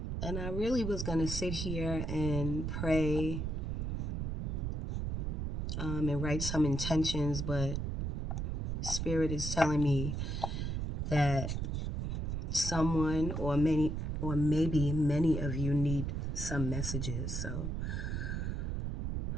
I really was going to sit here and pray and write some intentions, but Spirit is telling me that someone or maybe many of you need some messages. So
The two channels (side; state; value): right; noise; rumble, 1 dB below the sound